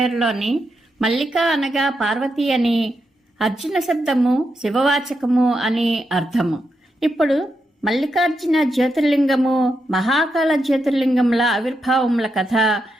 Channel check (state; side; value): normal; both; correlation 0.84